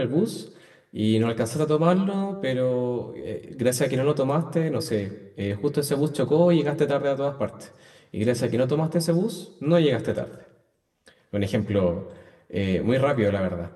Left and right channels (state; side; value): identical; both; correlation 1.00